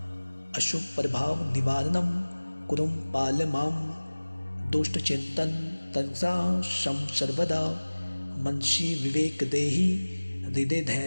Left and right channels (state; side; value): inverted; both; correlation -1.00